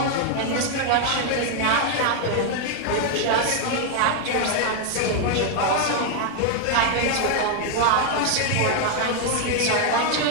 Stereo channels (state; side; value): different; both; correlation 0.00